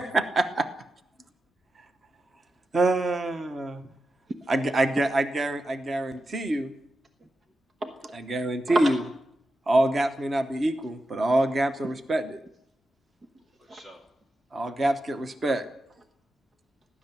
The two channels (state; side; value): normal; both; correlation 0.90